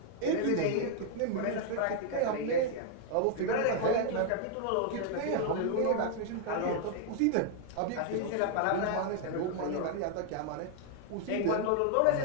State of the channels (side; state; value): both; different; correlation 0.00